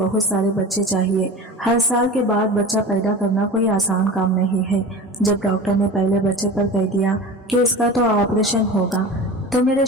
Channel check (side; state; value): both; normal; correlation 0.34